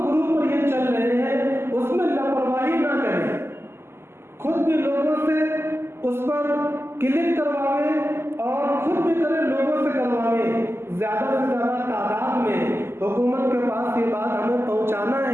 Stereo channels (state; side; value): late; left; 0.12 ms